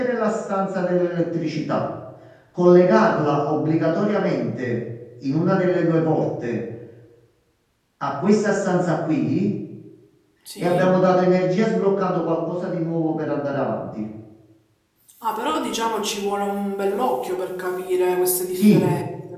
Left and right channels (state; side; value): identical; both; correlation 1.00